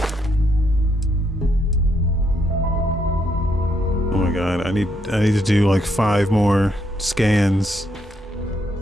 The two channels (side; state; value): both; normal; correlation 0.76